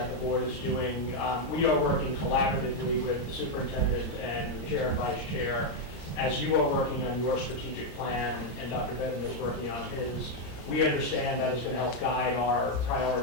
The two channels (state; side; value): late; right; 33 ms